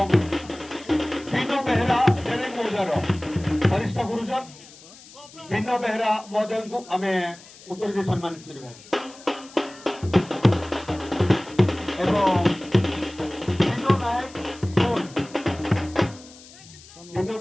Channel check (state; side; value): noise; left; hiss, 21 dB below the sound